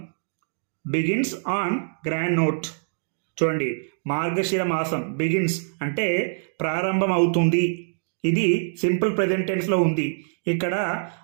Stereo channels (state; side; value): silent; left; digital silence